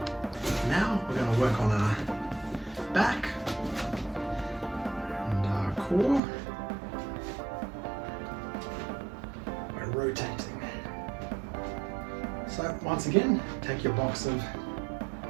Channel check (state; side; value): drops out; left; at 6.2 s